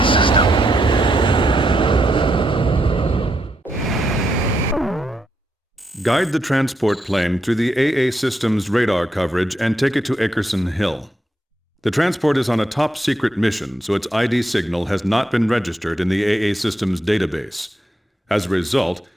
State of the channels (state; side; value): normal; both; correlation 0.81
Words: system. Guide the transport plane through the AA system's radar coverage and take it to Akerson Hill. The transport is on a top-secret mission, so its ID signal has not been registered in the AA system's database. As a result,